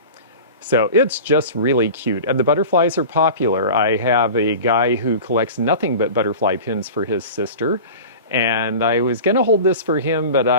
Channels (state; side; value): inverted; both; correlation -0.35